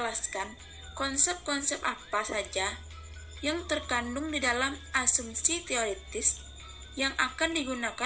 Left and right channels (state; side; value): identical; both; correlation 1.00